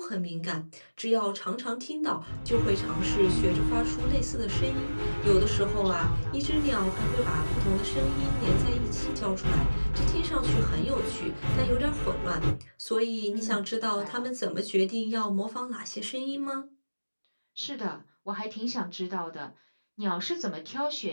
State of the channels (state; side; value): inverted; both; correlation -1.00